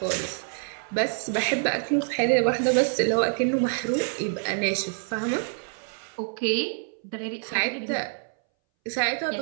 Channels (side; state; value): left; silent; 60 dB below the other